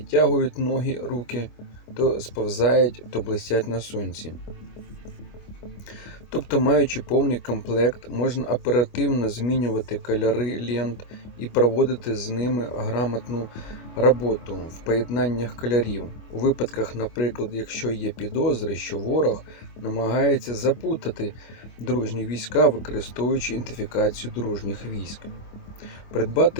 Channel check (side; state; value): right; late; 25 ms